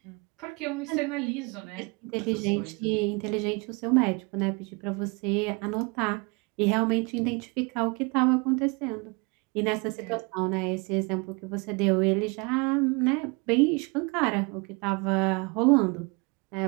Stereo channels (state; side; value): quieter; left; 29.7 dB